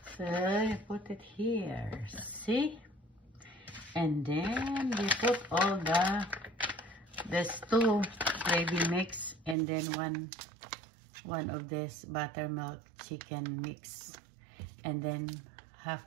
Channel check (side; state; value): left; drops out; at 9.6 s